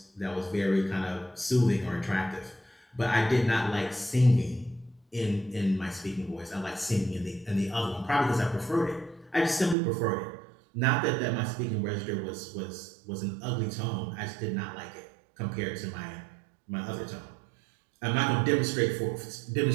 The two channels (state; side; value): drops out; left; at 9.8 s